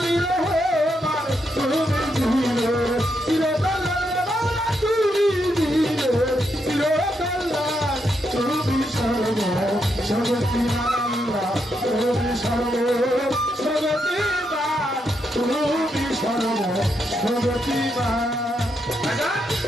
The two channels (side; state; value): both; normal; correlation 0.80